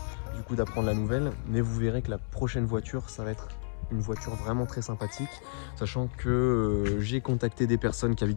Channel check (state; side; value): silent; right; 57 dB below the other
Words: du coup d'apprendre la nouvelle, mais vous verrez que la prochaine voiture ça va être une voiture vraiment très sympathique, sachant que j'ai contacté des personnes qui